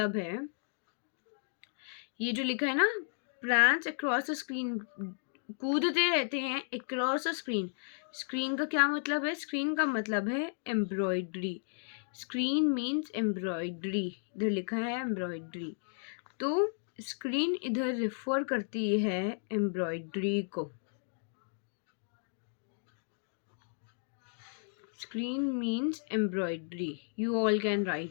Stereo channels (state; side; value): silent; right; digital silence